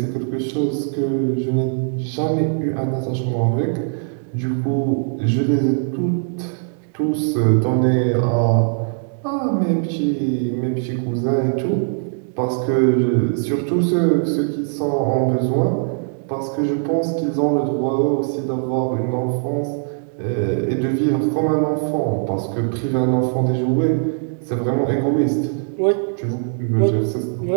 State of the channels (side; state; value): left; silent; 65 dB below the other